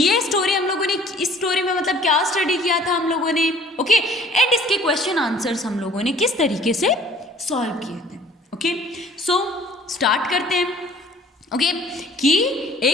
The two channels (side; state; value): both; normal; correlation 0.53